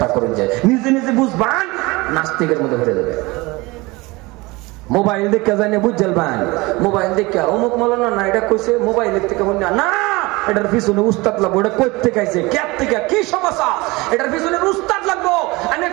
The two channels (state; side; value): quieter; left; 23.1 dB